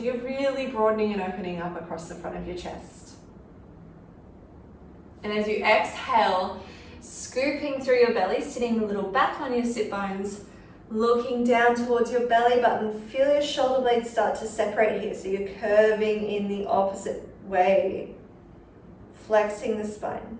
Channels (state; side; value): identical; both; correlation 1.00